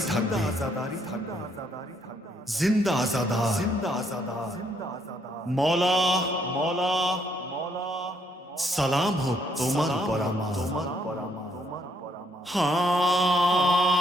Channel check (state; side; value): normal; both; correlation 0.71